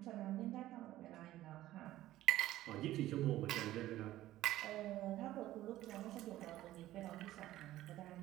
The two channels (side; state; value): left; quieter; 14.9 dB